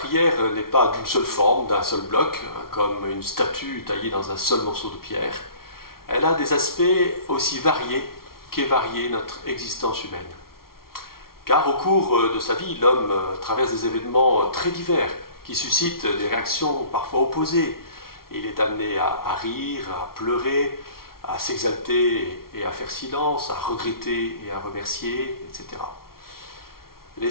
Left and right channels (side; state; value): right; late; 0.93 ms